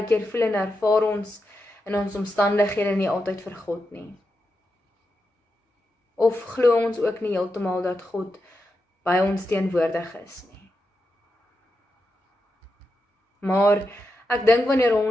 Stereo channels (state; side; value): normal; both; correlation 0.87